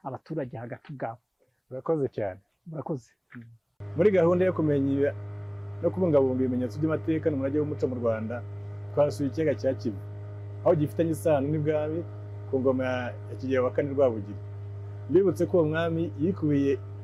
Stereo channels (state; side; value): identical; both; correlation 1.00